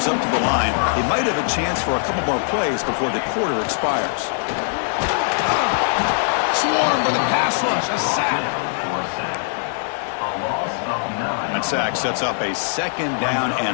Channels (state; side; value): silent; right; 65 dB below the other